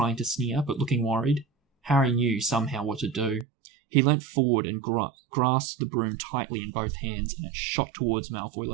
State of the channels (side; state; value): left; drops out; at 3.5 s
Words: to sneer, but looking worried. Harry knew somehow what to do. He leant forward and grasped the broom tightly in both hands, and it shot towards Malfoy